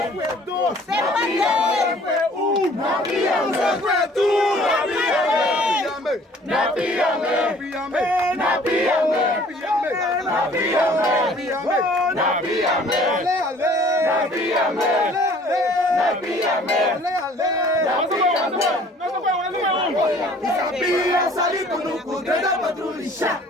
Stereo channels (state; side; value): normal; both; correlation 0.53